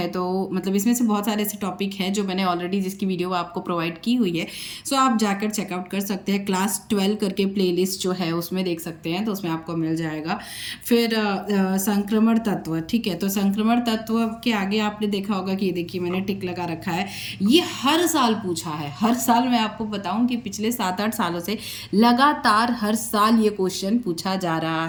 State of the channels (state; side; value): identical; both; correlation 1.00